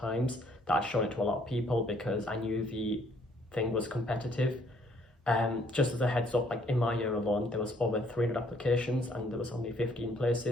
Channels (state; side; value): normal; both; correlation 0.65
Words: that I'd shown it to a lot of people because I knew the thing was competitive. Just as a heads up, like in my year alone, there was over 300 applications and there was only 15